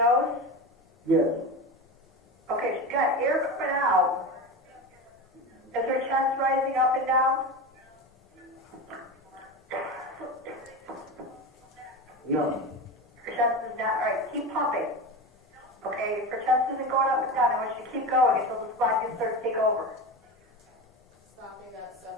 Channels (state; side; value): normal; both; correlation 0.24